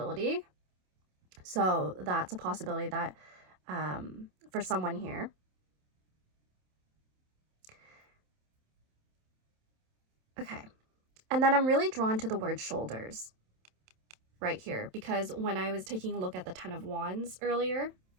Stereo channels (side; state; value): left; late; 27 ms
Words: So that's a possibility that for someone here. Okay. And then I'm really drawn to the word shoulders right here, because when I was taking a look at the Ten of Wands earlier,